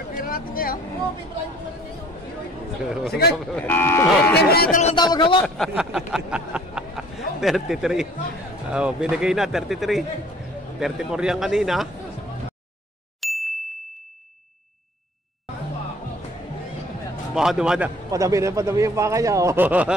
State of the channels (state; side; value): normal; both; correlation 0.52